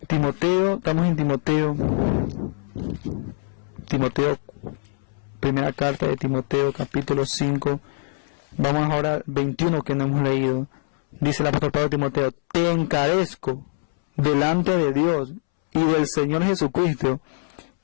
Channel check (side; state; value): right; silent; 63 dB below the other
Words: Timoteo, estamos en Timoteo, primera carta de Timoteo, capítulo 5, vamos ahora al 21 que no hemos leído. Dice el apóstol Pablo a Timoteo: te encarezco delante de Dios y del Señor Jesucristo